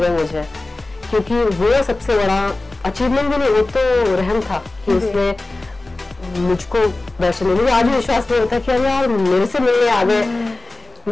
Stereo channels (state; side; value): quieter; right; 3.1 dB